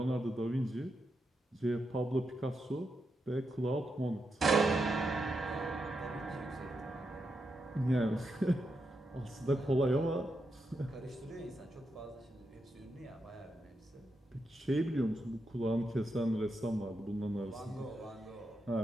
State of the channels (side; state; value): both; normal; correlation 0.85